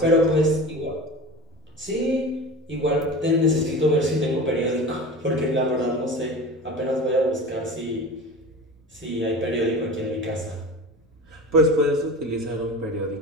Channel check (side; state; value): both; normal; correlation 0.33